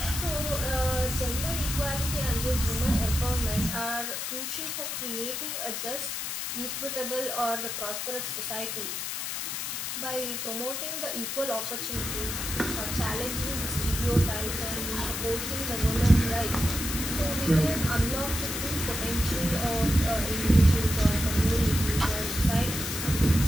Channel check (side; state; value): left; noise; hiss, 3 dB below the sound